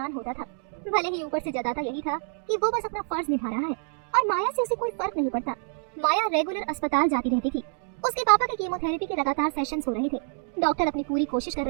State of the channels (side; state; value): left; silent; 60 dB below the other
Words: होता था। भले ही ऊपर से जताता यही था कि वो बस अपना फर्ज निभा रहा है और माया से उसे कोई फर्क नहीं पड़ता। माया रेगुलर अस्पताल जाती रहती थी। उसके पापा के कीमोथेरेपी के लगातार सेशंस हो रहे थे। डॉक्टर अपनी पूरी कोशिश कर